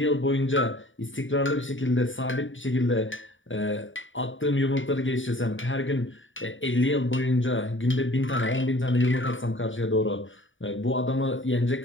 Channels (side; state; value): right; late; 0.56 ms